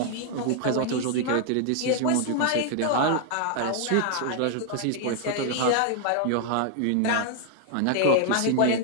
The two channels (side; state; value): both; different; correlation 0.00